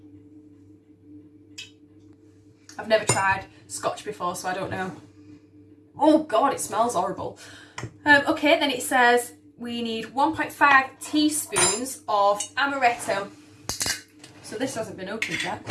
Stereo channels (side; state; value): both; identical; correlation 1.00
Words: I've never tried scotch before, so I don't know. Oh God, it smells horrible. Okay, then it says we need 1.5 teaspoons of amaretto. So this hasn't been opened yet,